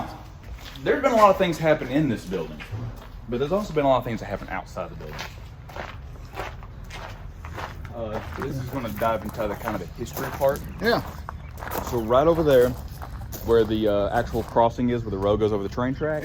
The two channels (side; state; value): both; identical; correlation 1.00